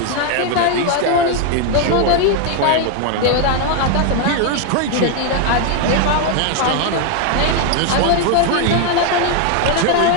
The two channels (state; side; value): different; both; correlation 0.01